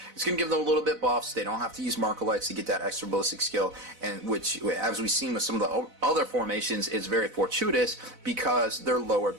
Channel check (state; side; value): late; left; 4.0 ms